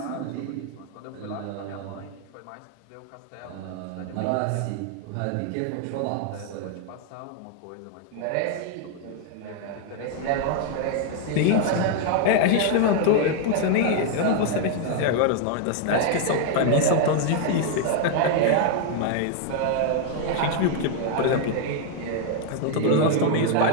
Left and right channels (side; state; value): both; different; correlation 0.00